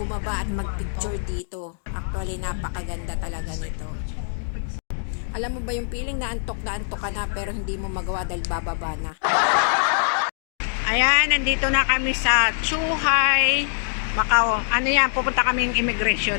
at magpicture dito. Actually, napakaganda talaga nito. Alam mo ba yung feeling na antok ka na pero hindi mo magawa dahil bababa na. Ayan, nandito na kami sa Zhuhai, Macau. Ano yan, pupunta kaming immigration.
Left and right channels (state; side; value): silent; right; digital silence